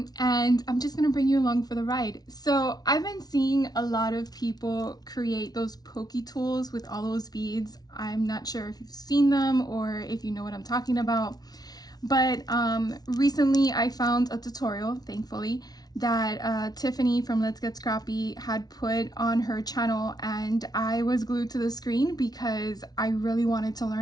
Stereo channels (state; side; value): late; right; 0.19 ms